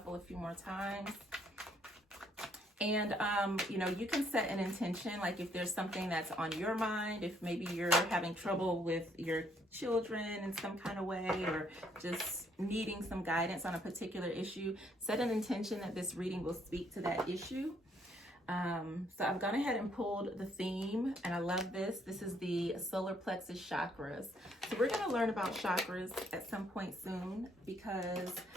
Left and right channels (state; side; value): normal; both; correlation 0.69